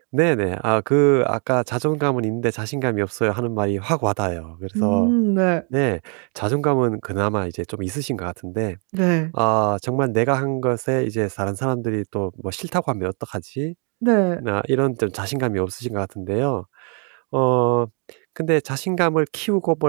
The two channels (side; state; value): left; quieter; 38.9 dB